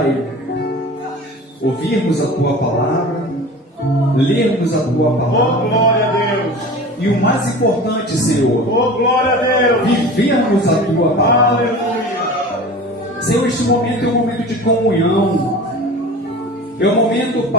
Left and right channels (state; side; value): normal; both; correlation 0.37